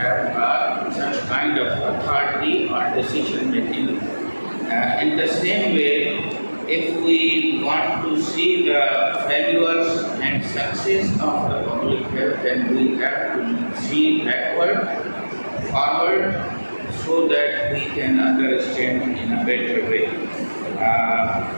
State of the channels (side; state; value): both; inverted; correlation -1.00